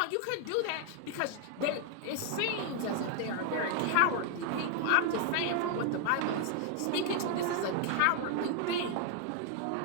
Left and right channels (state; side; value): different; both; correlation 0.00